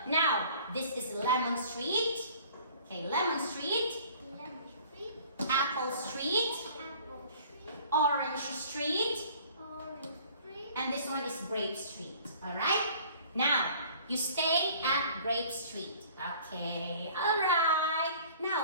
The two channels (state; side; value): inverted; both; correlation -0.51